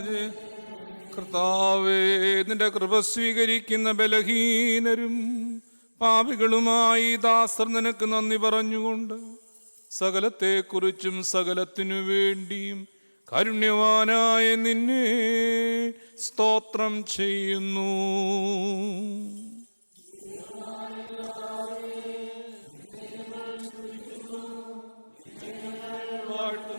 ചെയ്യണമേ. കർത്താവേ, നിന്റെ കൃപ സ്വീകരിക്കുന്ന ബലഹീനരും പാപികളുമായി ദാസർ നിനക്ക് നന്ദി പറഞ്ഞുകൊണ്ട് സകലത്തെക്കുറിച്ചും സകലത്തിനു വേണ്ടിയും കാരുണ്യവാനായ നിന്നെ സ്തോത്രം ചെയ്യുന്നു. ദൈവമായ കർത്താവേ, നിന്നെ ഞങ്ങൾ സ്തുതിക്കുന്നു, നിന്നെ ഞങ്ങൾ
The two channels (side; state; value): both; inverted; correlation -1.00